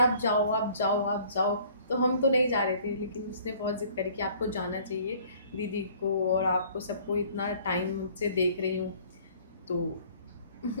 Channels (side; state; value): both; inverted; correlation -0.55